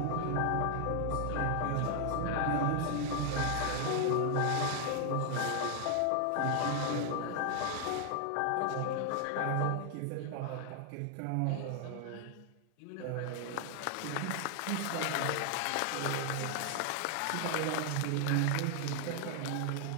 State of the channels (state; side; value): different; both; correlation 0.00